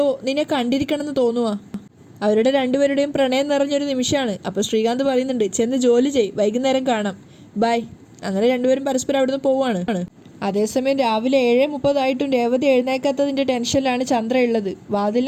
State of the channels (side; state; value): both; identical; correlation 1.00